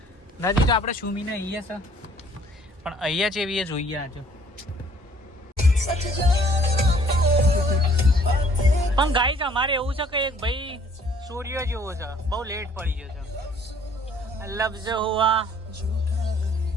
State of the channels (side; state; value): both; normal; correlation 0.58